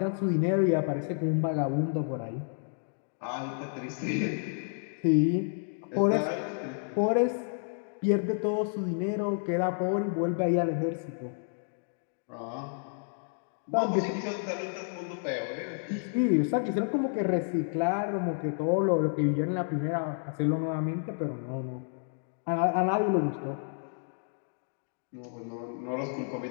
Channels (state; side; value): silent; right; digital silence